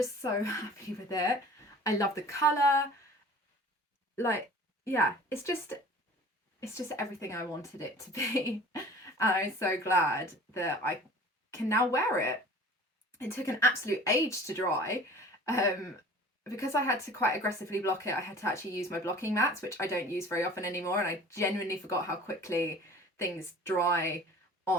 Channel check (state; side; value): normal; both; correlation 0.44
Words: so happy with it. I love the colour. Like, yeah, it's just everything I wanted it to be. And I'm so glad that I can now wear it. It took an absolute age to dry. Because I had to quite aggressively block it, I had to actually use my blocking mats, which I don't use very often anymore, and I genuinely forgot how quickly things dry